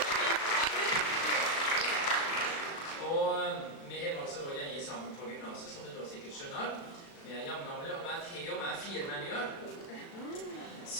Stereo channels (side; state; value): right; late; 36 ms